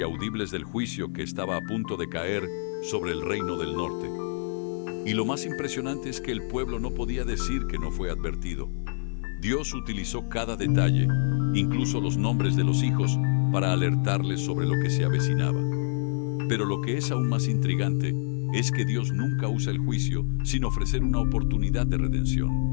audibles del juicio que estaba a punto de caer sobre el reino del norte. Y lo más impresionante es que el pueblo no podía decir que no fue advertido. Dios utilizó cada detalle, incluso los nombres de los hijos, para alertarles sobre lo que se avecinaba. Pero lo que es aún más intrigante es que Dios nunca usa el juicio sin ofrecer una oportunidad de redención.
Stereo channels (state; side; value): silent; right; 60 dB below the other